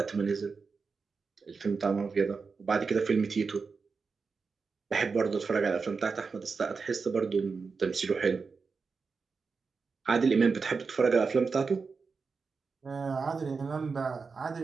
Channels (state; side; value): quieter; left; 4.9 dB